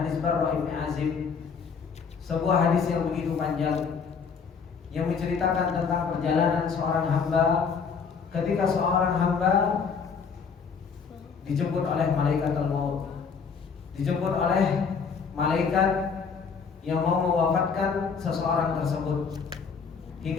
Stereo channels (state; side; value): quieter; right; 5.8 dB